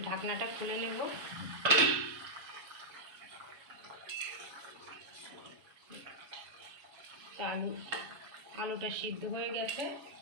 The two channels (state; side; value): late; left; 7.3 ms